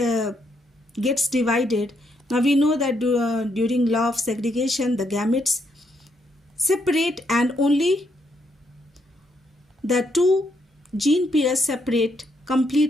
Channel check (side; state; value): both; normal; correlation 0.76